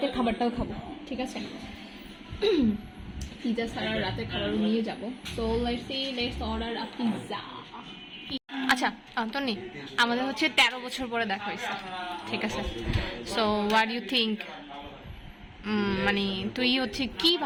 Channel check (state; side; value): identical; both; correlation 1.00